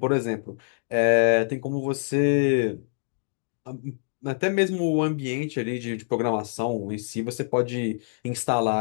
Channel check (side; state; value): right; silent; digital silence